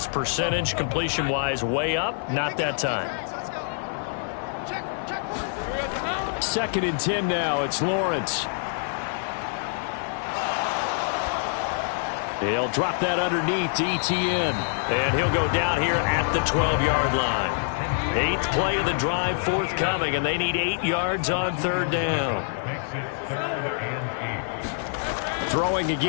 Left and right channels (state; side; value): silent; right; digital silence